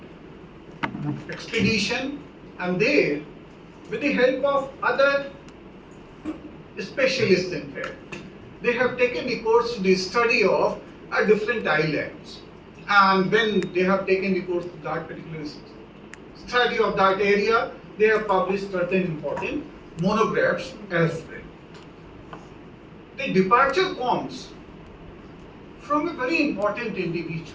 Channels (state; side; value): identical; both; correlation 1.00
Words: expedition, and there, with the help of other specialists, in fact, they have taken recourse to the study of are different islands. And when they have taken the course of that particular study of that area, they have published certain important monographs as well. The departure comes from a very important